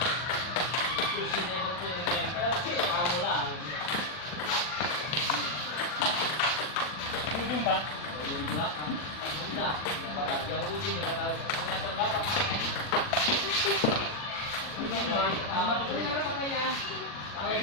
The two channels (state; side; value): late; right; 40 ms